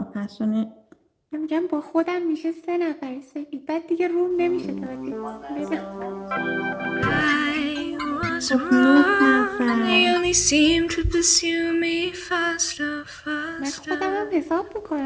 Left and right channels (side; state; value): both; identical; correlation 1.00